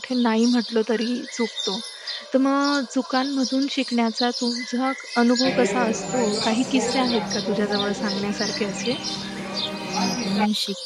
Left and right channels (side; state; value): both; identical; correlation 1.00